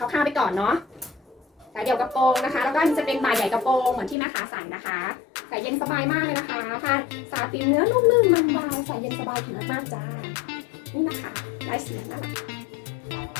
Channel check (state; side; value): drops out; right; at 4.2 s